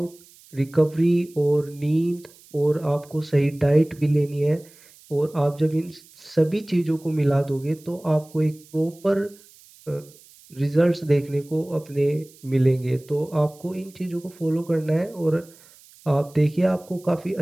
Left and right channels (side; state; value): right; noise; hiss, 25 dB below the sound